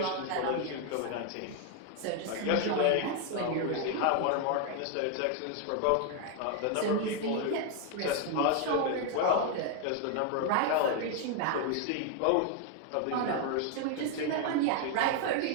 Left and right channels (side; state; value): both; different; correlation 0.00